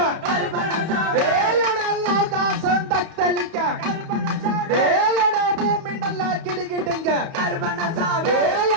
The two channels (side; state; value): left; late; 31 ms